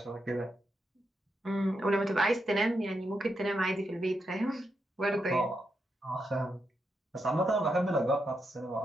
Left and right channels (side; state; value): both; normal; correlation 0.83